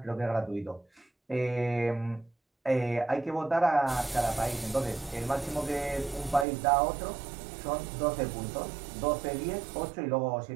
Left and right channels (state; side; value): drops out; left; at 6.5 s